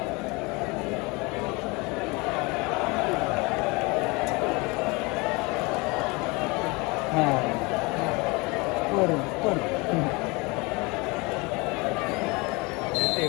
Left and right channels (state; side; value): quieter; right; 26.3 dB